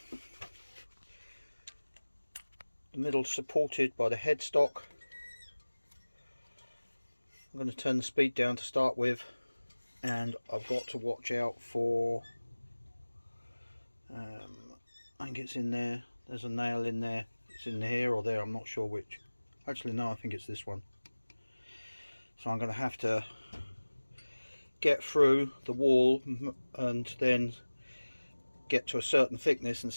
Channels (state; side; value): inverted; both; correlation -1.00